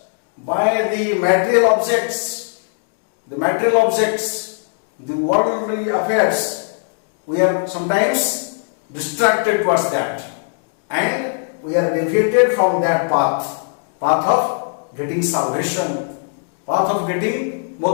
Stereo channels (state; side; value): silent; right; digital silence